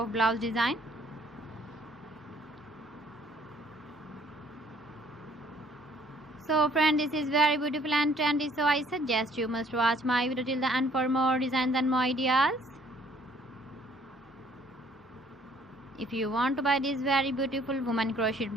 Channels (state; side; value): normal; both; correlation 0.60